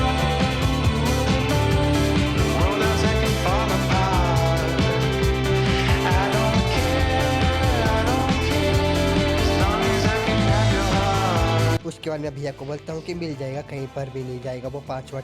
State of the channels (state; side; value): identical; both; correlation 1.00